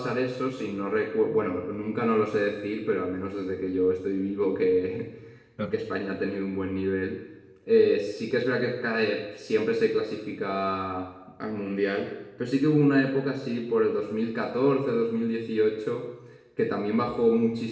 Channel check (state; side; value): identical; both; correlation 1.00